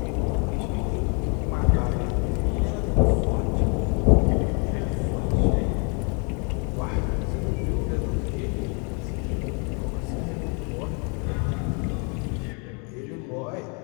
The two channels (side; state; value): right; quieter; 36.0 dB